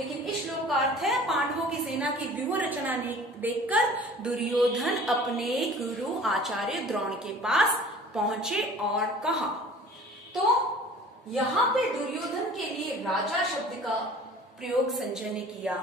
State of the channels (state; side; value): normal; both; correlation 0.46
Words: इस श्लोक का अर्थ है पांडवों की सेना की व्यूह रचना देखकर दुर्योधन अपने गुरु आचार्य द्रोण के पास पहुंचे और कहा। तो यहाँ पे दुर्योधन के लिए राजा शब्द का प्रयोग संजय ने किया।